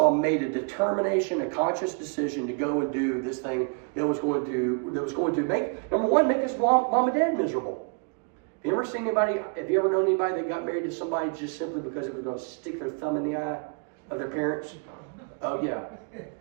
made a determination, a conscious decision to go and do this thing that was going to make, number one, make his mom and dad miserable. Have you ever known anybody that got married to somebody just simply because it was going to stick their thumb in the eye of their parents? Oh yeah.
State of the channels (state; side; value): quieter; left; 37.6 dB